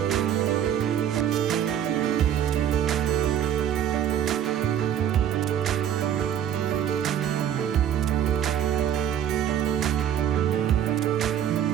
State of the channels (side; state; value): left; quieter; 10.0 dB